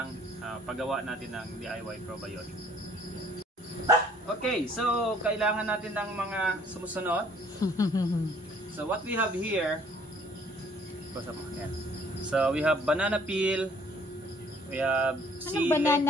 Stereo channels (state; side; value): normal; both; correlation 0.59